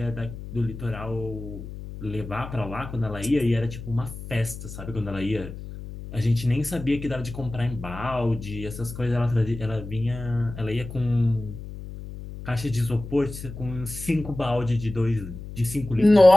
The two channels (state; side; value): noise; left; hum, 11 dB below the sound